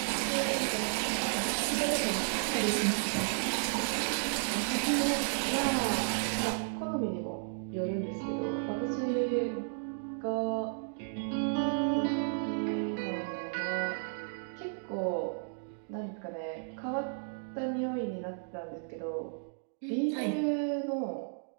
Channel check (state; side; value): silent; left; digital silence